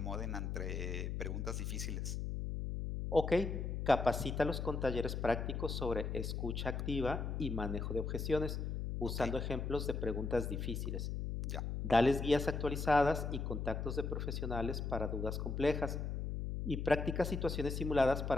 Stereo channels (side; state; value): left; noise; hum, 3 dB below the sound